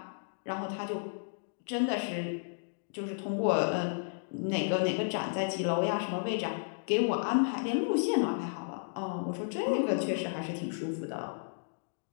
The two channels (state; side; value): silent; right; digital silence